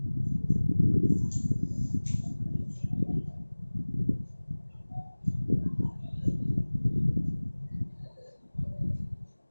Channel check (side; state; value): both; inverted; correlation -1.00